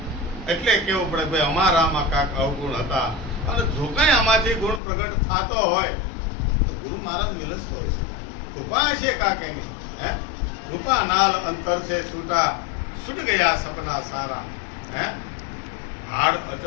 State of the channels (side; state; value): right; drops out; at 4.8 s